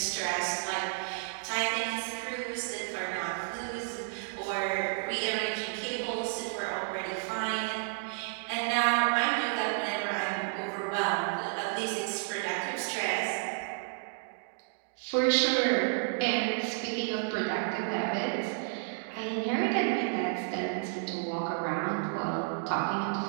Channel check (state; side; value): silent; left; digital silence